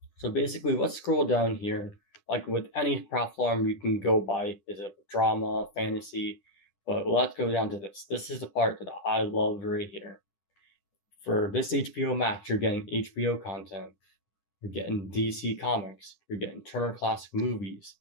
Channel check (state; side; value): late; right; 10 ms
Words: So basically, let's scroll down here. Like with any platform, you can go by is it drama, fantasy, but let's go down to this. This is the part that I love right here. For this HBO Max, you're getting HBO content, you're getting DC Comics, you're getting Turner Classic Movies,